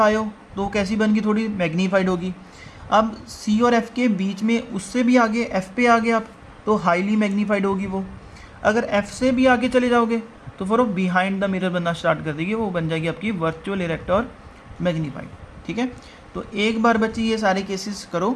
हो तो कैसी बन गई, थोड़ी मैग्नीफाइड होगी। अब सी और एफ़ के बीच में उससे भी आगे एफ़ पे आ गए आप तो हाईली मैग्नीफाइड होगी वो। अगर एफ़ से भी आगे चले जाओगे तो फिर वो बिहाइंड द मिरर बनना स्टार्ट कर देगी, वो बन जाएगी आपकी वर्चुअल, इरेक्ट और मैग्नीफाइड। ठीक है, तो एक बार बच्चे ये सारे केसेस करो।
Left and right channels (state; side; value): identical; both; correlation 1.00